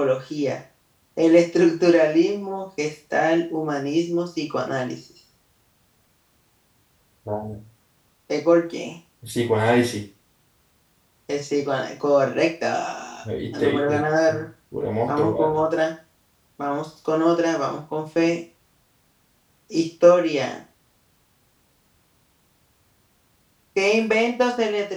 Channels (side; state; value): both; identical; correlation 1.00